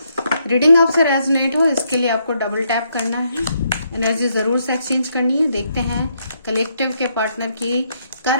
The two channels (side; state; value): both; inverted; correlation -0.76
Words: रीडिंग आपसे रेजोनेट हो इसके लिए आपको डबल टैप करना है, एनर्जी जरूर से एक्सचेंज करनी है। देखते हैं कलेक्टिव के पार्टनर की